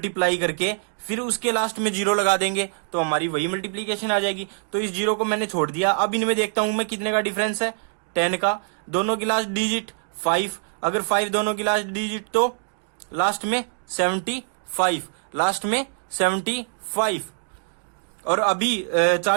करके फिर उसके लास्ट में जीरो लगा देंगे तो हमारी वही मल्टीप्लीकेशन आ जाएगी। तो इस जीरो को मैंने छोड़ दिया। अब इनमें देखता हूं मैं कितने का डिफरेंस है 10 का, दोनों की लास्ट डिजिट 5, अगर 5 दोनों की लास्ट डिजिट तो लास्ट में 75 लास्ट में 75। और अभी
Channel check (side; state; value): left; silent; digital silence